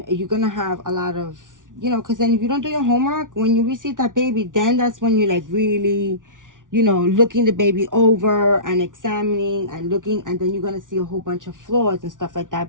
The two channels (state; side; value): late; left; 0.88 ms